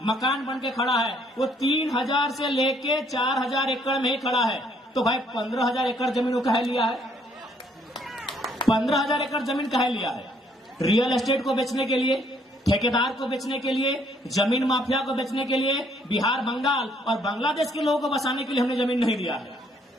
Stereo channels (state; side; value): normal; both; correlation 0.66